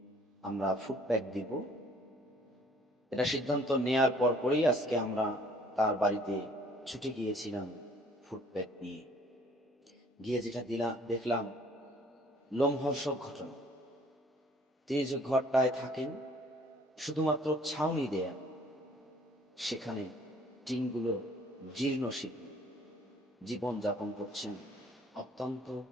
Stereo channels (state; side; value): normal; both; correlation 0.57